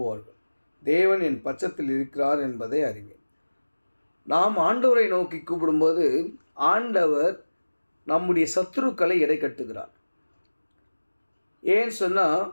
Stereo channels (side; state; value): both; inverted; correlation -1.00